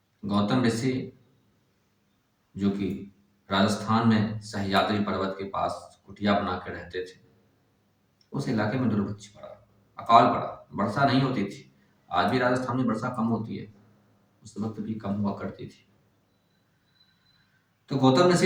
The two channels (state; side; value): identical; both; correlation 1.00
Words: गौतम ऋषि जो कि राजस्थान में सह्याद्री पर्वत के पास कुटिया बना के रहते थे, उस इलाके में दुर्भिक्ष पड़ा, अकाल पड़ा, वर्षा नहीं होती थी। आज भी राजस्थान में वर्षा कम होती है, उस वक्त भी कम हुआ करती थी। तो गौतम